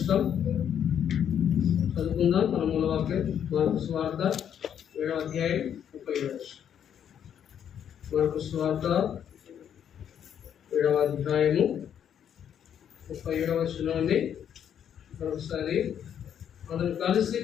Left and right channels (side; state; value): right; quieter; 9.0 dB